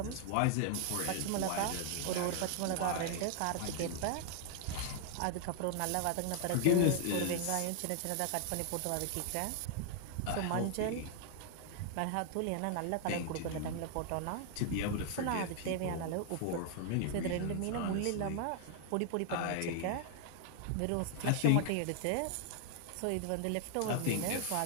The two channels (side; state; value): both; different; correlation 0.00